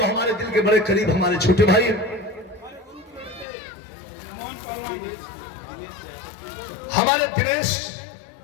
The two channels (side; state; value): right; drops out; at 3.5 s